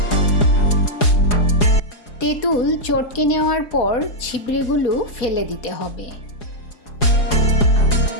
তেঁতুল চটকে নেওয়ার পর ছিবড়েগুলো ফেলে দিতে হবে।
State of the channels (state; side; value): late; right; 4.8 ms